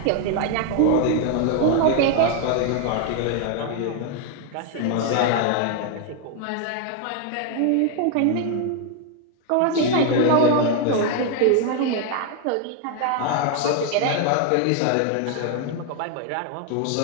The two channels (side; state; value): both; different; correlation 0.00